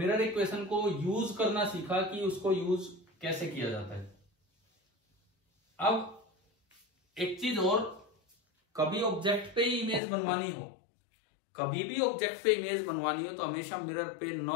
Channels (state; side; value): drops out; right; at 10.0 s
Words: इक्वेशन को यूज करना सीखा कि उसको यूज कैसे किया जाता है। अब एक चीज और, कभी ऑब्जेक्ट पे इमेज बनवानी हो, कभी भी ऑब्जेक्ट पे इमेज बनवानी हो तो हमेशा मिरर पे